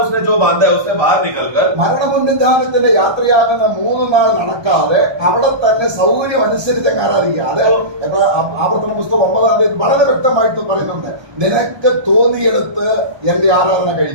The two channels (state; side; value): late; left; 1.2 ms